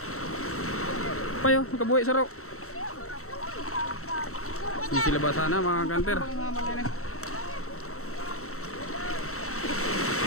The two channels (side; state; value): right; late; 0.64 ms